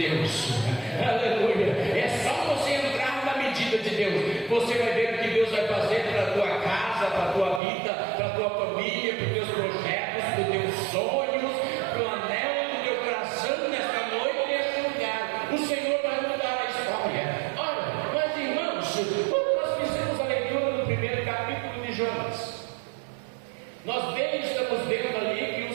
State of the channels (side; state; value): left; drops out; at 7.6 s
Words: Aleluia. É só você entrar na medida de Deus. Você vai ver o que Deus vai fazer para a tua casa, para a tua vida, para a tua família, para os teus projetos, para os teus sonhos, para o anelo do teu coração nesta noite, neste lugar. O Senhor vai mudar a história. Olha, mas irmãos, quando nós fizemos a leitura do primeiro capítulo de Jonas, nós estamos vendo ali que o